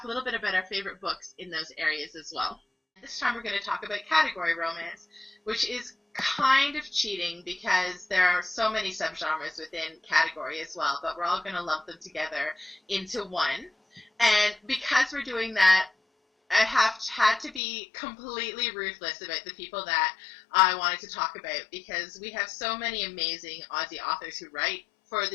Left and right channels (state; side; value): drops out; right; at 17.6 s